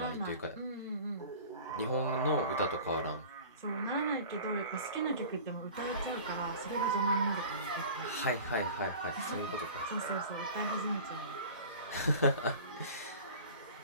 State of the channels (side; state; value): both; inverted; correlation -0.40